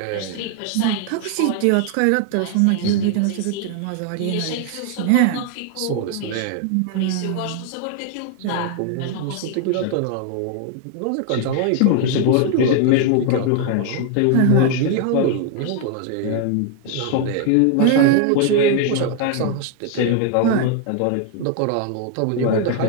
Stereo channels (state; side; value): different; both; correlation 0.00